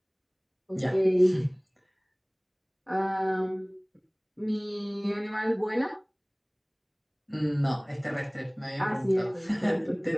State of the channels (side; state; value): both; identical; correlation 1.00